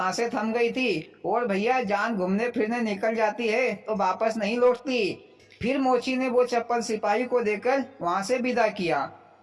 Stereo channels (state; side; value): identical; both; correlation 1.00